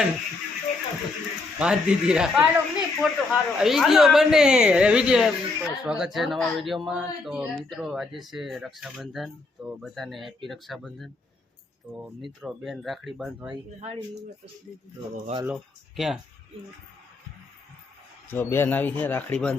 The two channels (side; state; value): right; quieter; 3.5 dB